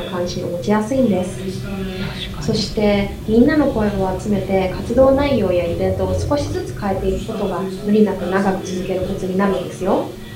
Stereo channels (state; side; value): identical; both; correlation 1.00